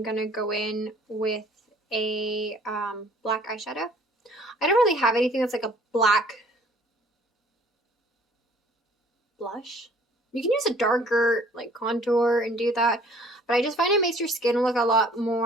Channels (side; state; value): both; normal; correlation 0.55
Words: going to go in with a black eyeshadow. I don't really have anything that's like a black blush. You can use a darker like contour and do that, but I just find it makes your skin look a lot